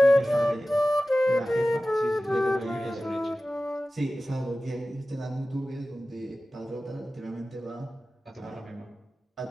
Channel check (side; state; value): both; normal; correlation 0.96